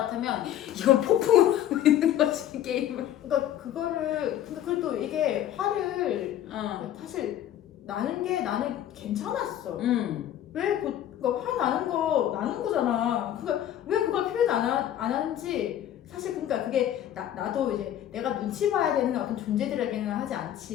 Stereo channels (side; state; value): right; quieter; 11.5 dB